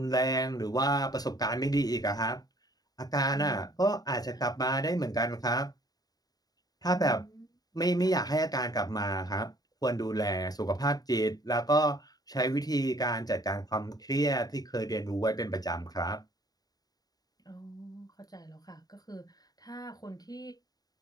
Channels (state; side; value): late; right; 0.18 ms